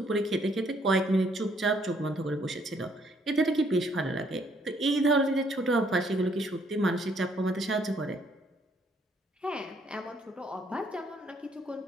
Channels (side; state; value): both; normal; correlation 0.67